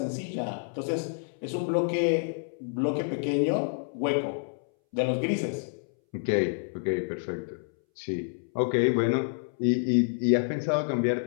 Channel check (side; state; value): right; silent; 59 dB below the other